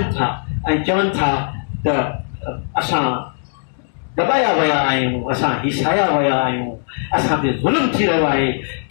था ऐं चवनि था त असां दॿाया विया आहियूं असां हिसाया विया आहियूं असां ते ज़ुल्म थी रहियो आहे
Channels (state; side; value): silent; right; digital silence